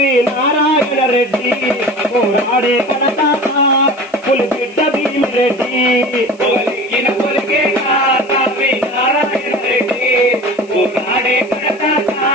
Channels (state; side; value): noise; right; hiss, 29 dB below the sound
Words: నారాయణ రెడ్డి పోరాడే కడతాత పులిబిడ్డ భీమిరెడ్డి పొగలెక్కిన పొలికే కారావి నారాయణ రెడ్డి పోరాడే కడతాత